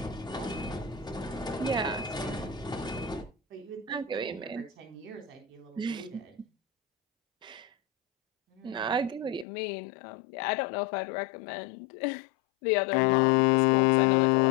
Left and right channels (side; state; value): right; drops out; at 9.5 s